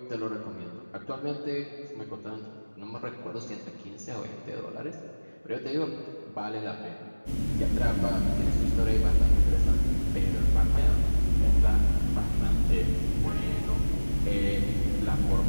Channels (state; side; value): inverted; both; correlation -1.00